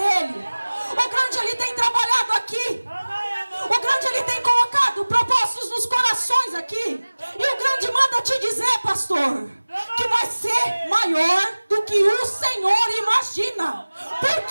O grande ele tem trabalhado aqui. O grande ele tem colocado propósitos nos corações aqui. E o grande manda te dizer, pastor, que vai ser maior do que o Senhor imagina.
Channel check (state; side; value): inverted; both; correlation -1.00